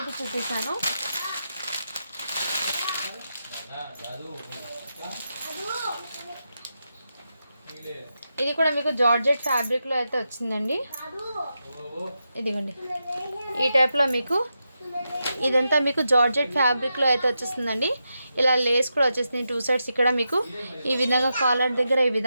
చూపిస్తాను. ఇది కూడా మీకు జార్జెట్ ఫ్యాబ్రిక్లో అయితే వచ్చిందండి. ఇదిగోండి ఈ టైప్లో మీకు ఇదంతా మీకు జార్జెట్ ఫ్యాబ్రిక్లో అయితే వచ్చేస్తుందండి. ఇలా లేస్ కూడా వచ్చేస్తుంది 2 సైడ్స్. ఇక్కడ మీకు ఈ విధంగా కాలర్ దగ్గర ఈ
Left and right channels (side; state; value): both; inverted; correlation -0.87